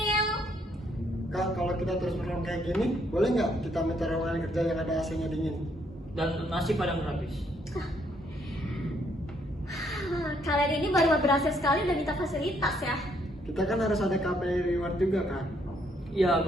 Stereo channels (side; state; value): both; normal; correlation 0.71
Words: Kak, kalau kita terus perform kayak gini, boleh nggak kita minta ruangan kerja yang ada AC-nya dingin? Dan nasi padang gratis. Kalian ini baru berhasil sekali udah minta fasilitas ya. Kita kan harus ada KPI reward juga kan? Iya,